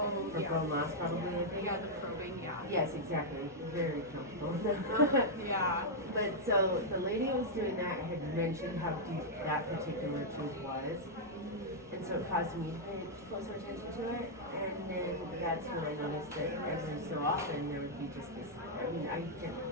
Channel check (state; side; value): noise; right; rumble, 27 dB below the sound